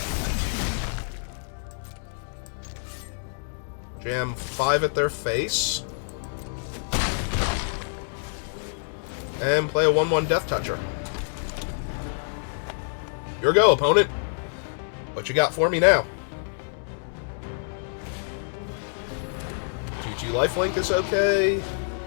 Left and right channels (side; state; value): right; silent; 60 dB below the other